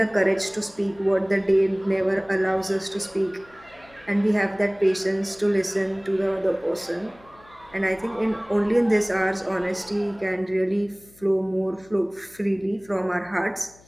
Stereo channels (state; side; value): noise; left; hum, 26 dB below the sound